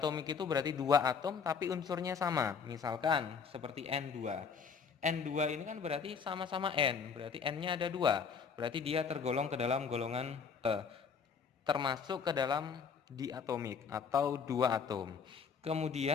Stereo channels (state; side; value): quieter; right; 6.1 dB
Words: itu berarti dua atom tapi unsurnya sama. Misalkan seperti N2. N2 ini kan berarti sama-sama N, berarti N-nya ada dua. Berarti dia tergolong ke dalam golongan termasuk ke dalam diatomik atau dua atom.